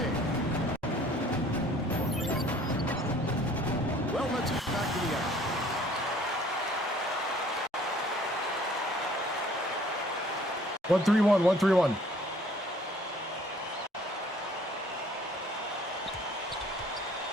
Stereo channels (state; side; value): normal; both; correlation 0.55